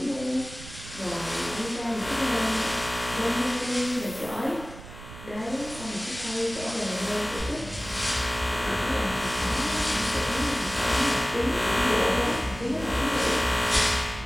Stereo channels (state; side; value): noise; right; rumble, 14 dB below the sound